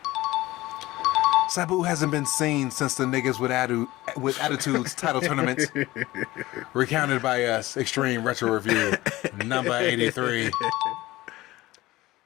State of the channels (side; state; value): right; quieter; 18.1 dB